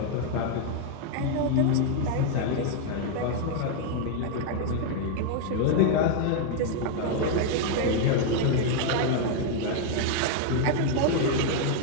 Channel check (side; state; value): both; different; correlation 0.00